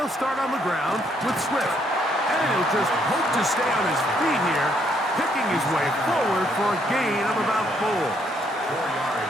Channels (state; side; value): normal; both; correlation 0.71